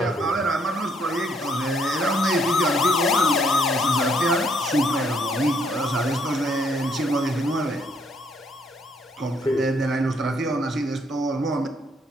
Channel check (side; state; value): both; normal; correlation 0.68